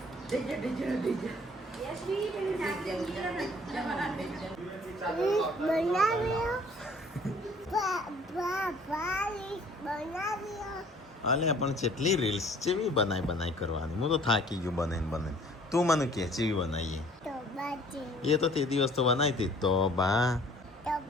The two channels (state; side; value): normal; both; correlation 0.54